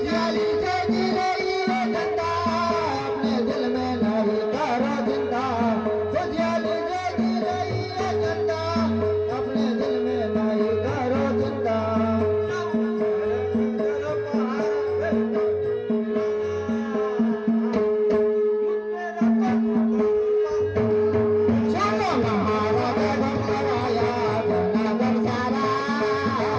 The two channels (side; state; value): both; identical; correlation 1.00